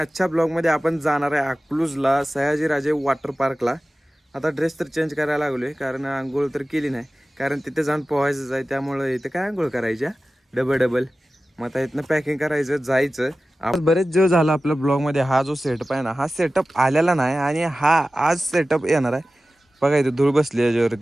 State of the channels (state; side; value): normal; both; correlation 0.96